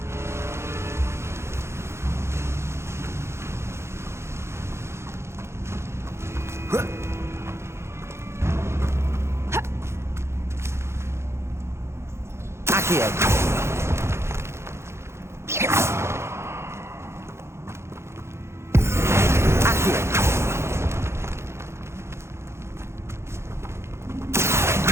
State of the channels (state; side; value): late; left; 0.13 ms